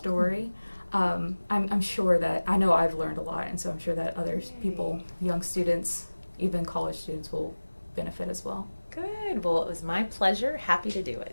I'm sure that, I know I've learned a lot, and so I'm sure that other people, young students, even college students, will benefit as well. Good. Well, it was my pleasure. Happy to do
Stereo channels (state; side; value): inverted; both; correlation -1.00